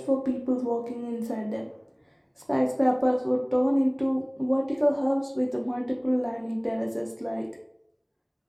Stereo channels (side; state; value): both; identical; correlation 1.00